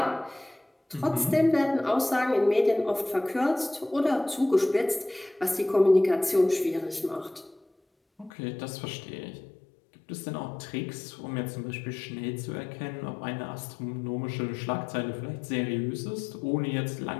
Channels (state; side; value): drops out; right; at 8.3 s